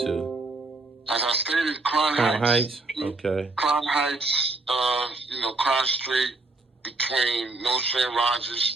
As I stated, Crown Heights. Okay. Crown Heights, Crown Street, between North and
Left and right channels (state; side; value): quieter; left; 3.2 dB